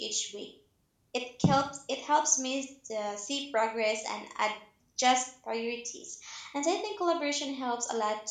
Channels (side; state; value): both; identical; correlation 1.00